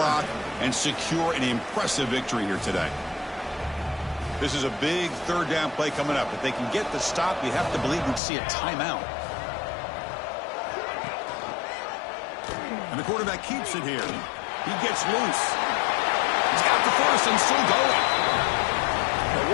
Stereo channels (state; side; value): drops out; right; at 8.2 s